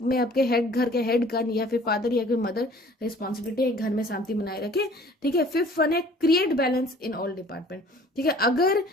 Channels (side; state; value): both; normal; correlation 0.51